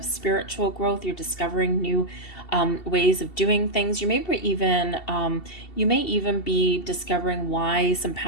spiritual growth. You're discovering new ways of doing things. You may even be discovering why some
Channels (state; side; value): late; right; 2.7 ms